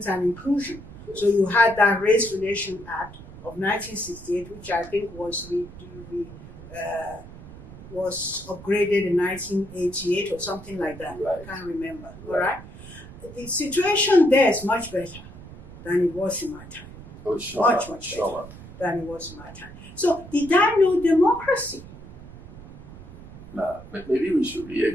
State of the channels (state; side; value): noise; right; rumble, 16 dB below the sound